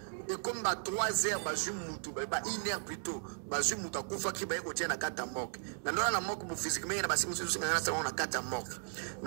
et comme ba 3 heures bazwi mutu ba 1 heure plutôt bazwi mutu akufaki ba ekotia na kati ya morgue na ndona na morgue bu physiquement na basi musu singa na sa na kati ya morgue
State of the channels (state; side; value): silent; left; 54 dB below the other